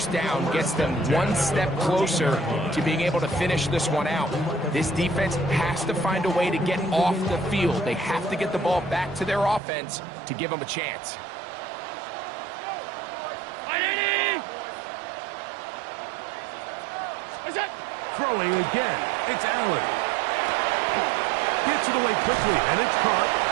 down gets them one step closer to being able to finish this one out. This defense has to find a way to get off the field. They have to get the ball back to their offense to give them a chance. Throwing again, it's Allen. Gets it away quickly, and it's caught.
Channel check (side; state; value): left; drops out; at 9.6 s